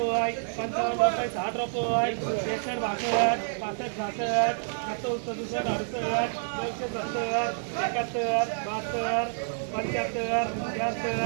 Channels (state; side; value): silent; left; digital silence